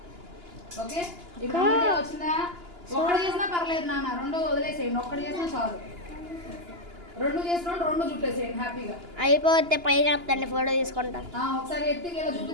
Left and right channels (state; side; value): late; left; 2.9 ms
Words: ఓకే ఇప్పుడు వచ్చిందా? ఒక్కటి చేసినా పర్లేదు నాన్న. రెండోది వదిలేసేయండి. ఒక్కటి చేసినా చాలు. రెండు చేసిన రెండు చుట్టేసేయండి హ్యాపీగా. అయిపోతే పైకి వస్తండి ఫోటో తీసుకుంటా. ఒకసారి ఎత్తి ఇలా